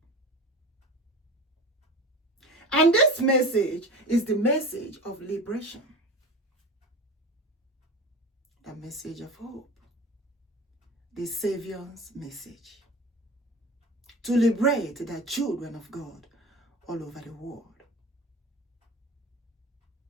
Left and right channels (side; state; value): both; normal; correlation 0.33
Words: And this message is the message of liberation, the message of hope, the Savior's message, to liberate the children of God all over the world.